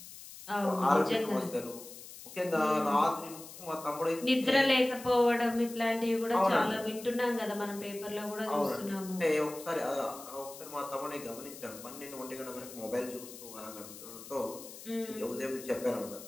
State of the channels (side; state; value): left; noise; hiss, 15 dB below the sound